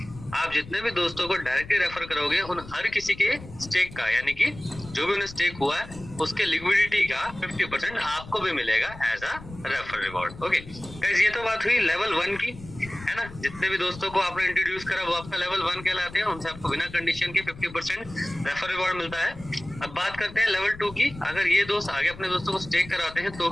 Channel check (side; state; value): left; noise; rumble, 16 dB below the sound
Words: आप जितने भी दोस्तों को डायरेक्टली रेफर करोगे उन हर किसी के स्टेक का, यानी कि जो भी उन्हें स्टेक हुआ है उसके लिक्विडिटी का 50% आपको भी मिलेगा as a refer reward. Okay guys, ये तो बात हुई लेवल 1 की, है ना। जितने भी दोस्तों को आपने इंट्रोड्यूस करा वो आपका लेवल 1 कहलाते हैं, उनसे आपको बिना कंडीशन के 50% रेफर रिवॉर्ड मिलता है। अब बात करते हैं लेवल 2 की। अगर ये दोस्त आगे अपने दोस्तों को स्टेक कराते हैं तो